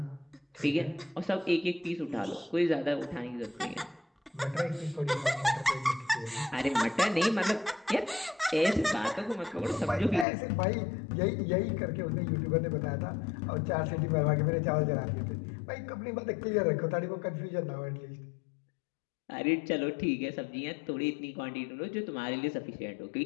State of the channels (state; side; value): drops out; right; at 10.2 s